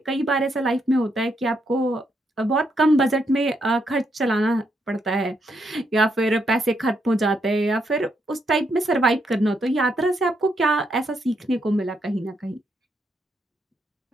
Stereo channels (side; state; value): both; normal; correlation 0.78